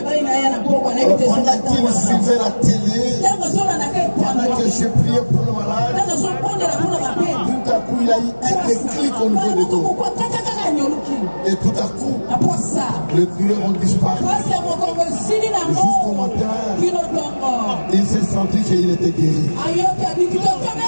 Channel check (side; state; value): both; inverted; correlation -1.00